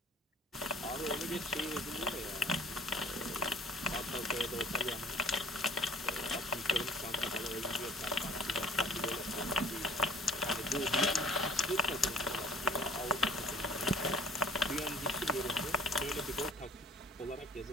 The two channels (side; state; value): both; normal; correlation 0.53